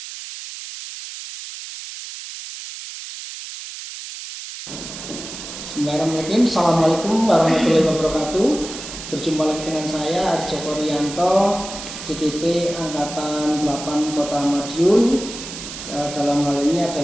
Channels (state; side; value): noise; right; hiss, 10 dB below the sound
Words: Bismillahirrahmanirrahim. Assalamualaikum warahmatullahi wabarakatuh. Berjumpa lagi dengan saya Aris Joko Rianto, CGP Angkatan 8 Kota Madiun. Dalam hal ini